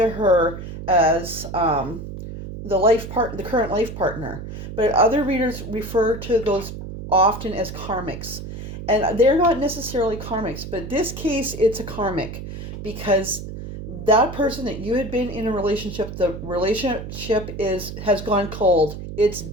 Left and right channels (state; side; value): noise; right; hum, 9 dB below the sound